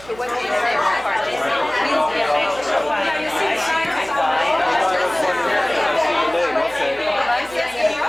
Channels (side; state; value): right; noise; hum, 22 dB below the sound